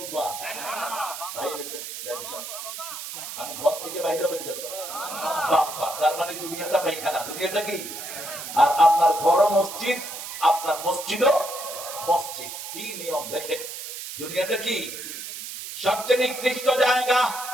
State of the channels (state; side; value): noise; right; hiss, 9 dB below the sound